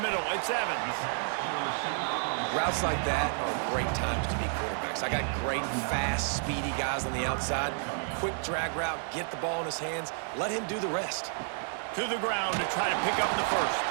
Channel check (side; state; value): left; silent; 57 dB below the other